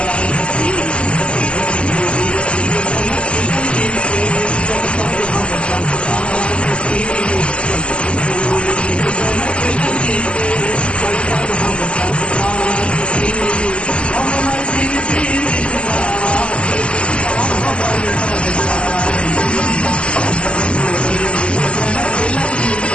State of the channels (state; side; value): late; right; 0.055 ms